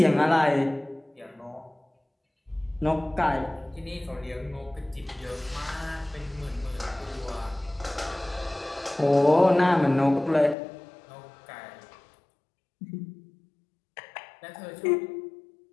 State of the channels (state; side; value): drops out; right; at 10.6 s